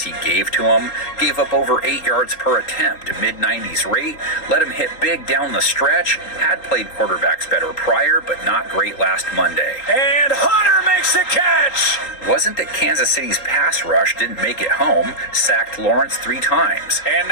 he gave to him, gave up over 8 yards per attempt, a mid-90s rate, let him hit big down the stretch, had played quarterbacks better prior, but not great last Monday. And Hunter makes the catch. Wasn't that Kansas City's pass rush didn't make it home, sacked Lawrence 3 times. And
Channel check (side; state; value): right; late; 3.8 ms